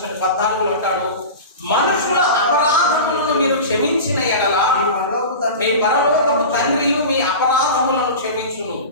14లో అంటాడు, మనుషుల అపరాధములను మీరు క్షమించిన ఎడల మీ పరలోకపు తండ్రి మీ అపరాధములను క్షమించును.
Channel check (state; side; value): inverted; both; correlation -0.30